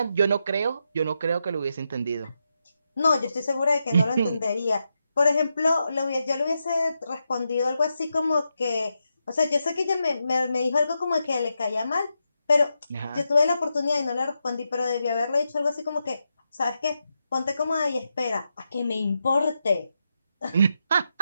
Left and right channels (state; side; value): inverted; both; correlation -0.86